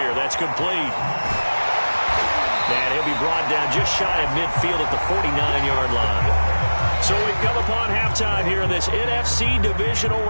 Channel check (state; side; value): inverted; both; correlation -1.00